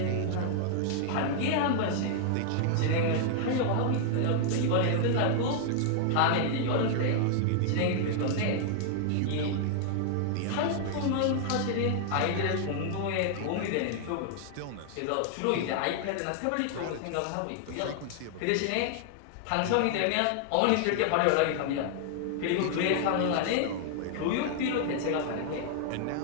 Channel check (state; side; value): different; both; correlation -0.01